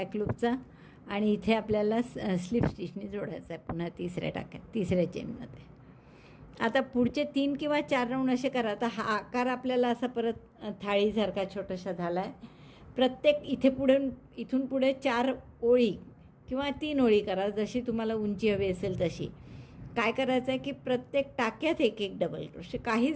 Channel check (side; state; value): both; identical; correlation 1.00